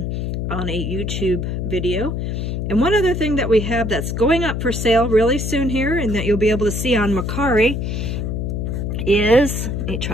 on a YouTube video. And one other thing that we have that's going up for sale really soon here, and that you'll be able to see on Mercari, is, let me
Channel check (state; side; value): noise; left; hum, 2 dB below the sound